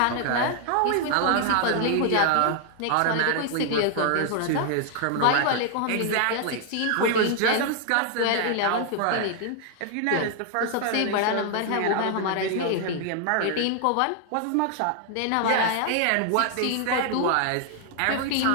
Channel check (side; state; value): both; different; correlation 0.00